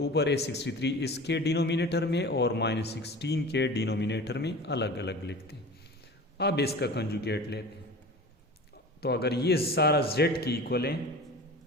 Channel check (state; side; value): normal; both; correlation 0.36